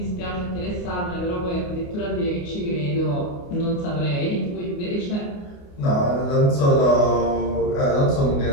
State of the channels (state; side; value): late; right; 28 ms